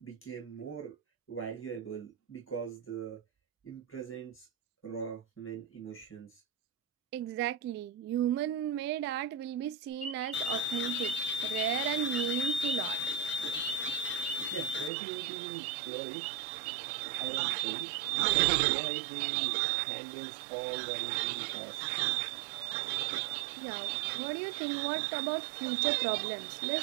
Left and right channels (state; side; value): drops out; left; at 14.9 s